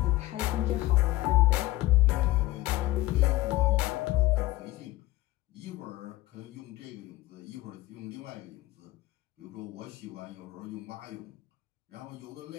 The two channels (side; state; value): right; quieter; 17.8 dB